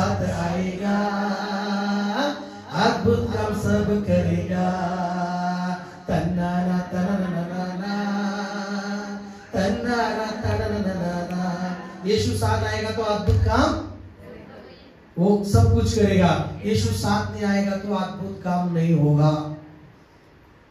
आएगा, अद्भुत काम सब करेगा. तन्नाना तन्नाना तन्नाना तन्नाना. यीशु साथ आएगा तो अद्भुत काम वो सब कुछ करेगा. यीशु साथ नहीं आएगा तो अद्भुत काम नहीं होगा.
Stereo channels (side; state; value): both; identical; correlation 1.00